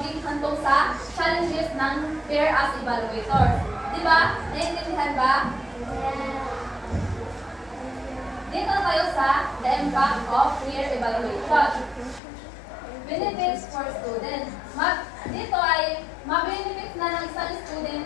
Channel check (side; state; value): right; drops out; at 12.2 s